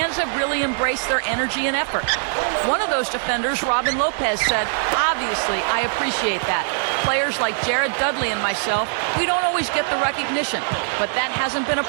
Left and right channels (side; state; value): left; silent; 64 dB below the other